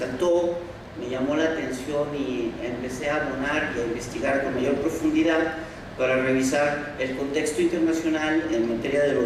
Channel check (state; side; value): identical; both; correlation 1.00